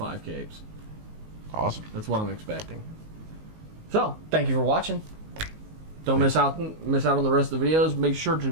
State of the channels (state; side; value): late; left; 19 ms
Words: capes. Awesome. That's what I'm expecting. So, thank you for watching. Don't miss out on the rest of the videos. Make sure to